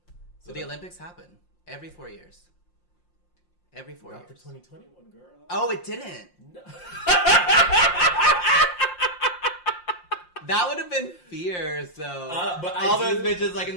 So the Olympics happen every 4 years. Every 4 years. Not the 2021, girl. Oh, it didn't. No. That would have been fierce, though. But those bitches like in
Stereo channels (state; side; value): late; right; 5.7 ms